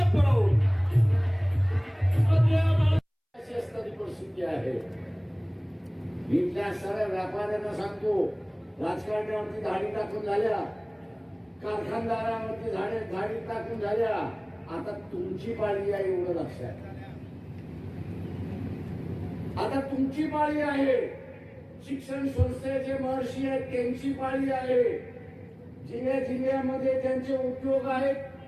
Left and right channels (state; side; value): identical; both; correlation 1.00